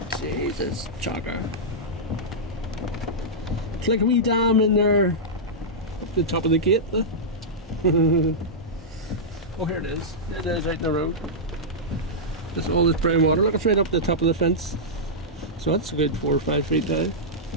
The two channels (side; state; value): both; normal; correlation -0.10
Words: Jesus, jogger. It's like a wee dam in there, up the top of the gate. Oh, here it is. It is out in the road. Just all this brown water. Look, it's right up the top of the fence. So that's a good 4 or 5 feet down.